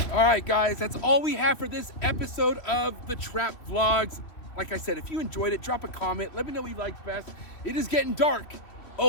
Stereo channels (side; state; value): right; late; 3.1 ms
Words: All right, guys, that's all we have for this episode of the Trap Vlogs. Like I said, if you enjoyed it, drop a comment. Let me know what you liked best. It is getting dark.